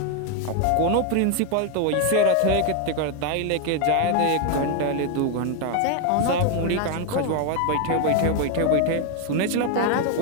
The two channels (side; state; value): both; different; correlation 0.01